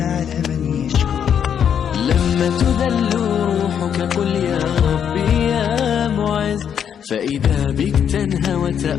من يشكر. لما تذل روحك قل يا ربي يا معز، فإذا بك تنهى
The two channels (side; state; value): right; quieter; 8.4 dB